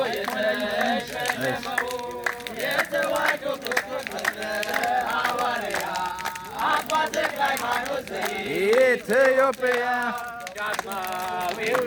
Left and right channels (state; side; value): identical; both; correlation 1.00